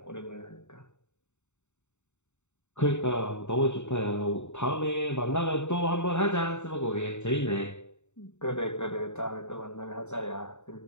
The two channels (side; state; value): right; late; 0.83 ms